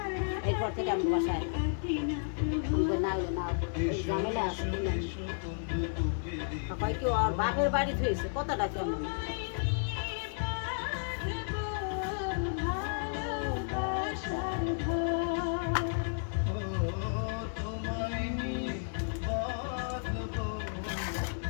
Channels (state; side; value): silent; right; digital silence